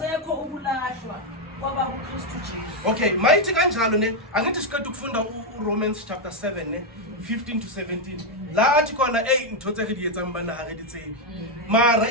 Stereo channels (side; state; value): both; normal; correlation 0.03